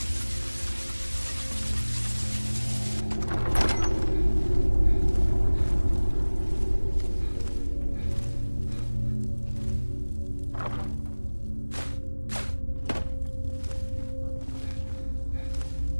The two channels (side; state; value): both; inverted; correlation -1.00